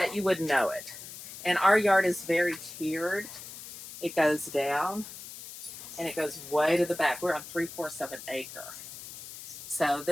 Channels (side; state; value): left; noise; hiss, 13 dB below the sound